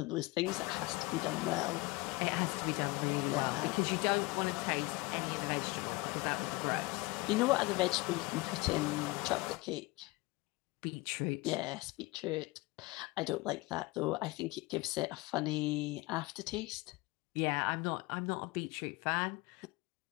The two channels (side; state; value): right; quieter; 22.9 dB